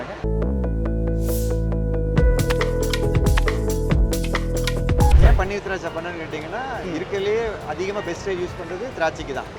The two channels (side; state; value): both; identical; correlation 1.00